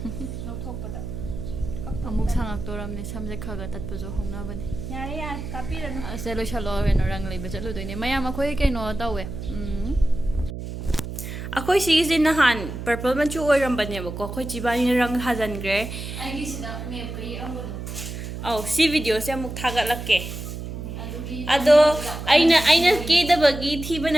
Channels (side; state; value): right; noise; hum, 8 dB below the sound